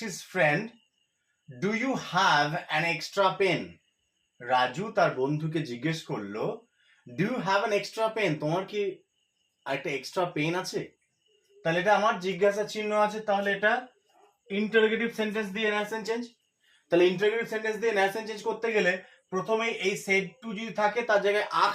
his friend, do you have an extra pen? Raju তার বন্ধুকে জিজ্ঞেস করলো, do you have an extra pen? তোমার কি একটা এক্সট্রা পেন আছে? তাহলে এটা আমার জিজ্ঞাসা চিহ্ন আছে, তাহলে এটা ইন্টারোগেটিভ সেন্টেন্স দিয়ে নারেশন চেঞ্জ। তাহলে ইন্টারোগেটিভ সেন্টেন্স দিয়ে নারেশন চেঞ্জ করতে গেলে প্রথমে এই সেড টু যদি থাকে তার জায়গায়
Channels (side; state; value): both; identical; correlation 1.00